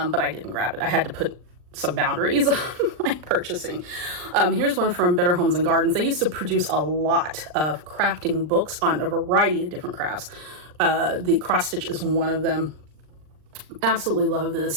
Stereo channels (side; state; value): left; late; 39 ms